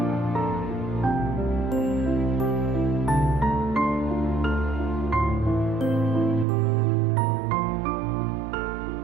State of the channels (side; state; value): left; drops out; at 6.5 s